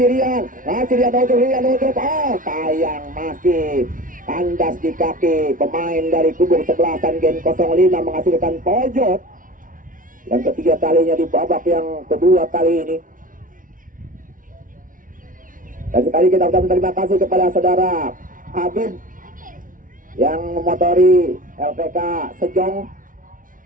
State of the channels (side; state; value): left; late; 0.39 ms